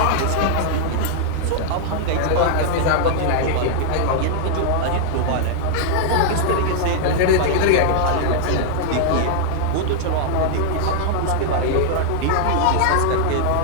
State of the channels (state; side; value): different; both; correlation -0.01